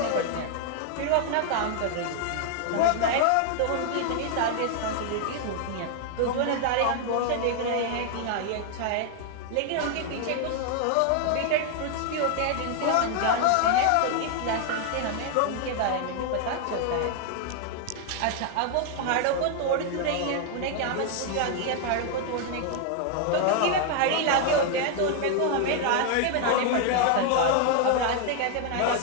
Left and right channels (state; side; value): different; both; correlation 0.00